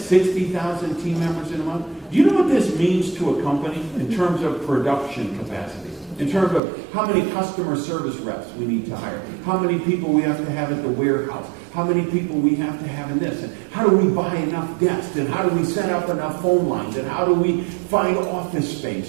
team members in a month, do you know what this means to a company in terms of production capacity? In terms of how many customer service reps we need to hire, how many people we have to have at the warehouse, how many people we have to have in this, and how do we buy enough desks, and how do we set up enough phone lines, and how do we find office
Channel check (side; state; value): left; drops out; at 6.6 s